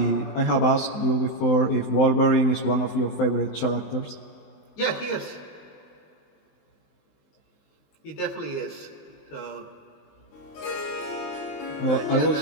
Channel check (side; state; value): right; late; 19 ms